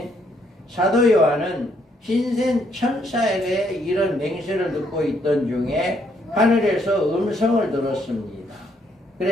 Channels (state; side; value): normal; both; correlation 0.71